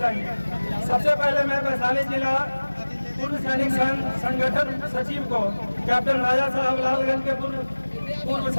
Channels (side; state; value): both; inverted; correlation -1.00